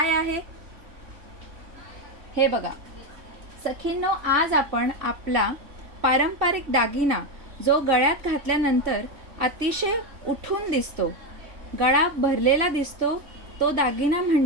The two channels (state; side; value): late; left; 3.1 ms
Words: आहे. हे बघा सखींनो, आज आपण आपला पारंपरिक दागिना जो गळ्यात घातल्यानंतर अतिशय उठून दिसतो, गळा भरलेला दिसतो, तो दागिना